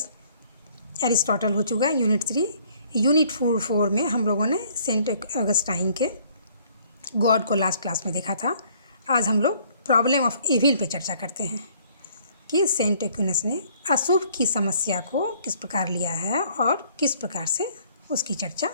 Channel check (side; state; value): both; inverted; correlation -0.61